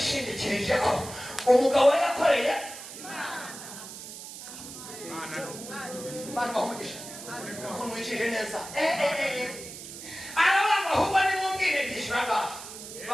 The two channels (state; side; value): noise; right; hiss, 12 dB below the sound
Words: ko umugabo yakoreye Imana bahumugisha kumwicije neza. Arabanga ahubwo nimumbwire byishyuraga